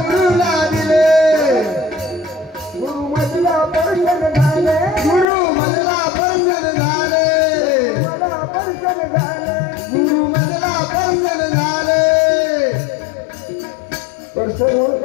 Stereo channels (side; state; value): right; drops out; at 5.2 s